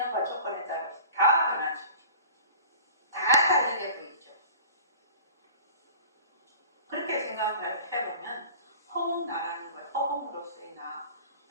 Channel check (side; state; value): both; inverted; correlation -0.43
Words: 조건에 따라서 다 변하죠. 다 다르게 보이죠. 그렇게 생각을 해보면 허공나라는 거예요. 허공으로서의 나,